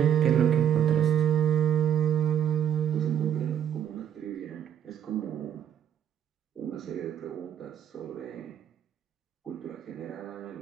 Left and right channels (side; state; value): left; quieter; 9.4 dB